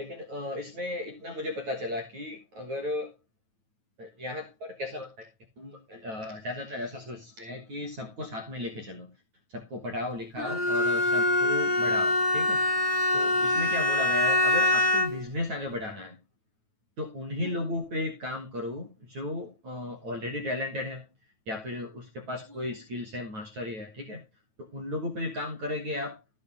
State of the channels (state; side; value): late; left; 9.2 ms